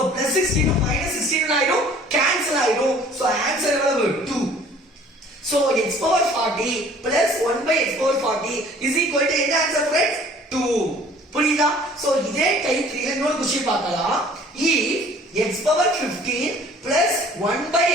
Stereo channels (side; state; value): both; normal; correlation 0.52